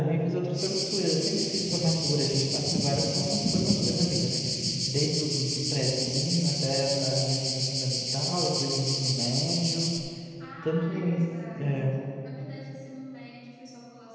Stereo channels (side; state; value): both; identical; correlation 1.00